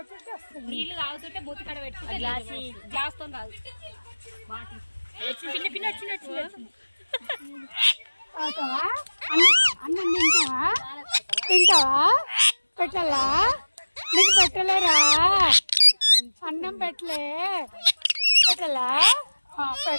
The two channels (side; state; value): both; inverted; correlation -1.00